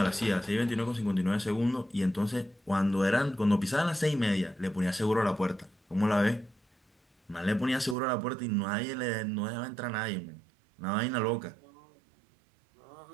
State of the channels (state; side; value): drops out; left; at 8.0 s